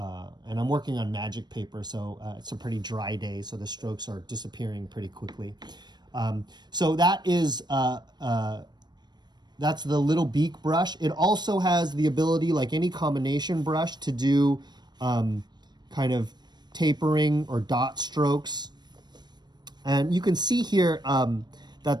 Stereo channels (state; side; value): late; left; 0.21 ms